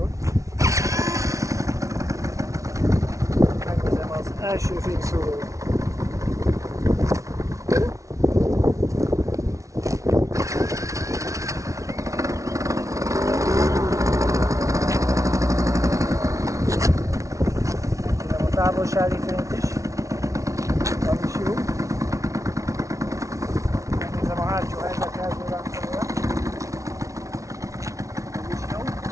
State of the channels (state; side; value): late; left; 0.15 ms